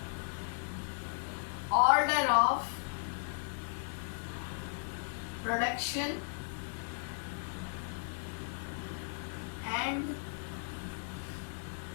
Order of production and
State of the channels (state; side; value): silent; right; 54 dB below the other